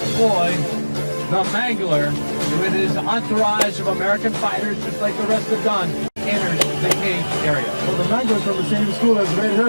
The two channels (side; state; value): both; inverted; correlation -1.00